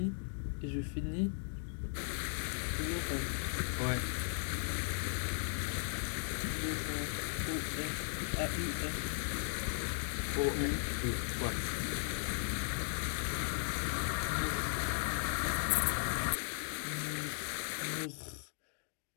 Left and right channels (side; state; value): right; silent; digital silence